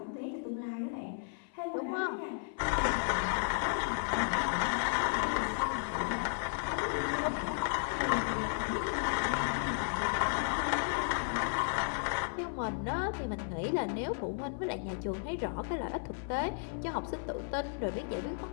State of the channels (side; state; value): right; silent; 55 dB below the other